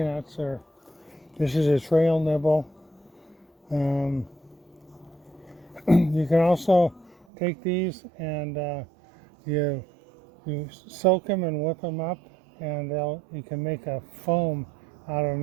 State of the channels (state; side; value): drops out; left; at 7.2 s